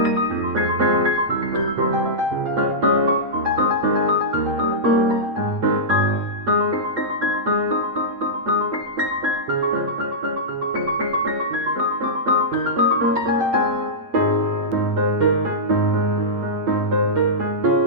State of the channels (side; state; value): left; late; 8.5 ms